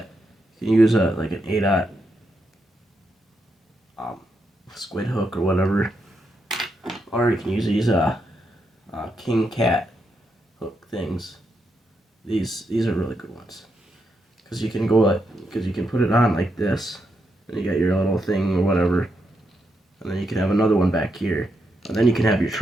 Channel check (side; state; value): both; normal; correlation 0.82